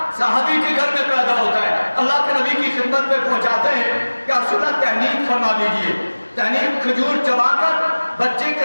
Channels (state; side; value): inverted; both; correlation -1.00